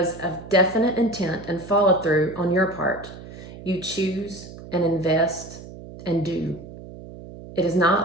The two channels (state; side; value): noise; right; hum, 15 dB below the sound